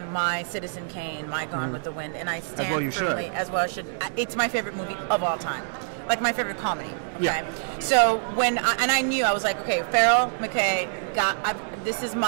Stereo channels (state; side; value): silent; left; digital silence